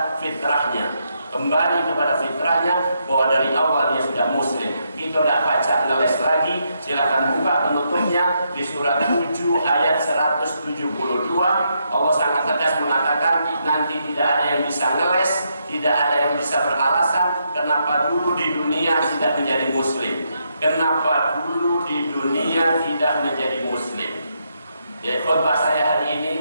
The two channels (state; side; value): inverted; both; correlation -0.79